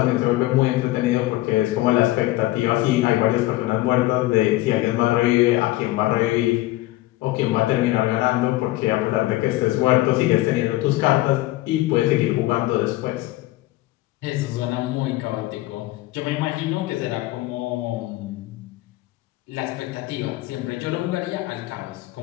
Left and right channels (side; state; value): right; quieter; 17.8 dB